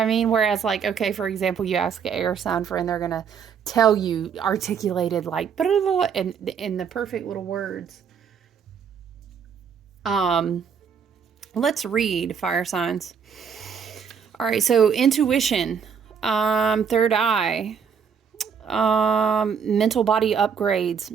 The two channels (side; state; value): left; quieter; 6.9 dB